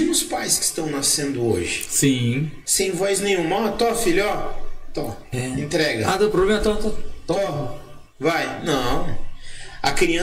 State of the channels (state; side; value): identical; both; correlation 1.00